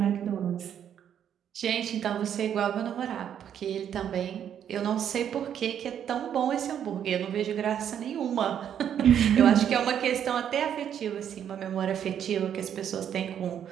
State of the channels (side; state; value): left; quieter; 9.2 dB